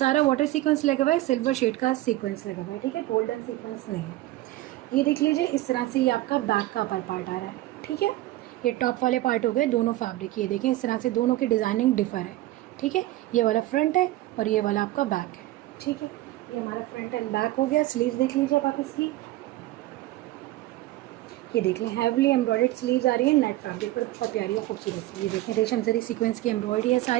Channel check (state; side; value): quieter; left; 16.6 dB